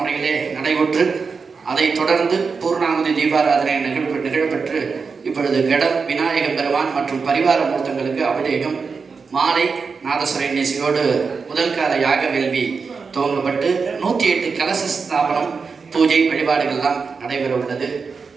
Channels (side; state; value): left; quieter; 5.1 dB